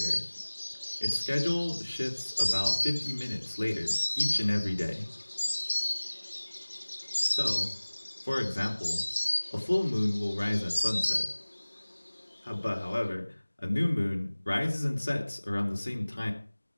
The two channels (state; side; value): inverted; both; correlation -1.00